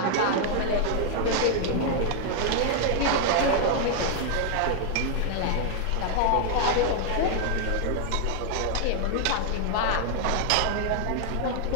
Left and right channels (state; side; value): different; both; correlation 0.00